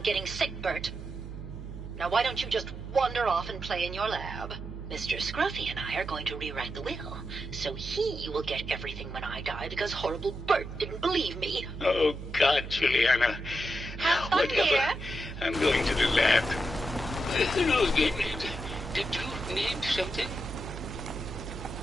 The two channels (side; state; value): right; noise; hum, 10 dB below the sound